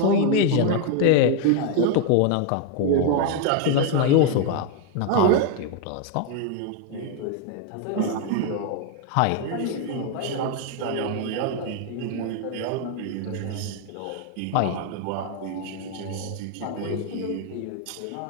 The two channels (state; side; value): different; both; correlation 0.01